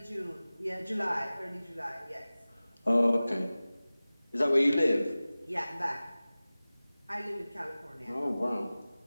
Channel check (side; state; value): both; inverted; correlation -0.98